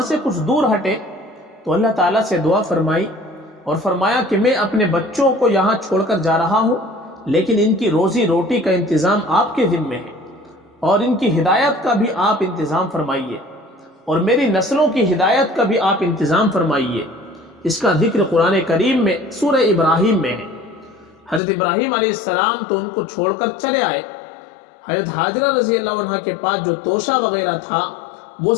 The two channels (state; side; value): drops out; right; at 21.4 s